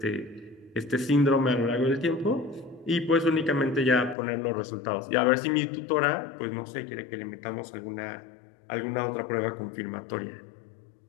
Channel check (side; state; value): right; drops out; at 4.2 s